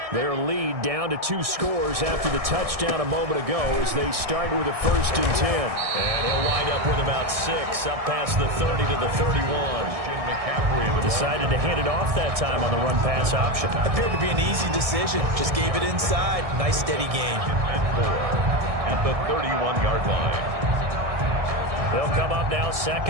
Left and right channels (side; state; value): left; late; 1.6 ms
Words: Their lead down to 2 scores after the touchdown a moment ago as they start with a 1st and 10. And he'll wind up with about 6 up past the 30 to the 31. Decided to hand it off that time on the run-pass option. Appeared to be an easy decision. Just gave it inside. Nice steady gain. And 4 at the 31-yard line. They'll come up now